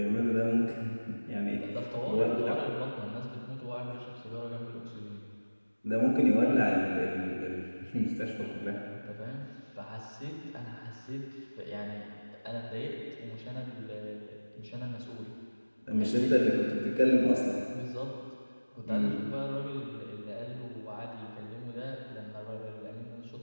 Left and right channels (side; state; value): both; inverted; correlation -1.00